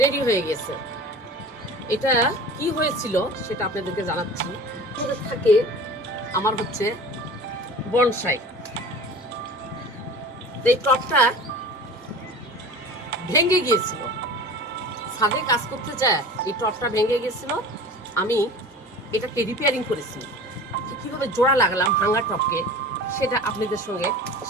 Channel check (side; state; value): both; normal; correlation 0.38